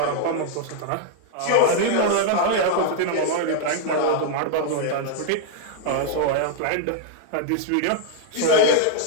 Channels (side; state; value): both; different; correlation -0.01